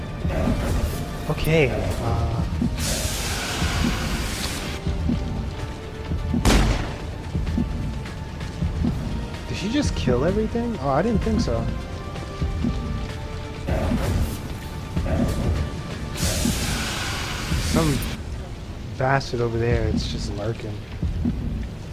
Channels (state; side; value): identical; both; correlation 1.00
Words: Okay, did she just kill everything? Oh, I didn't think so. Some bastard over there, it's just lurking.